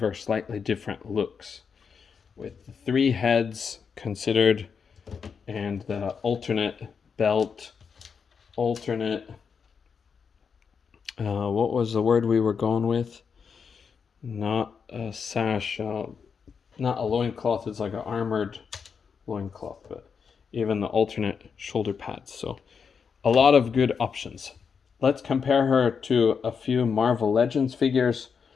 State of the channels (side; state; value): right; quieter; 6.1 dB